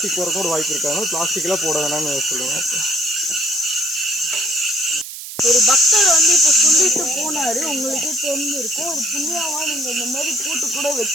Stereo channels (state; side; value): noise; right; hiss, 11 dB below the sound